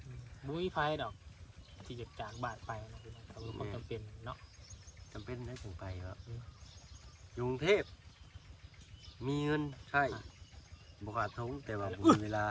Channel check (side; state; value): both; identical; correlation 1.00